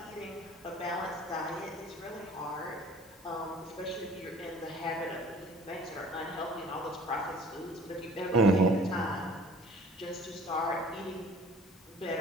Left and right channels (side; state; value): left; noise; hiss, 26 dB below the sound